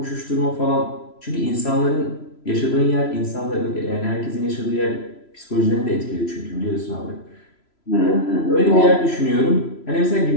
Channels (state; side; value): late; right; 3.0 ms